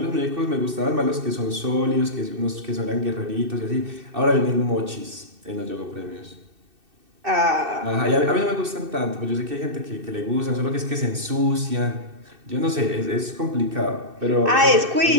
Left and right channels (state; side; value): late; left; 2.6 ms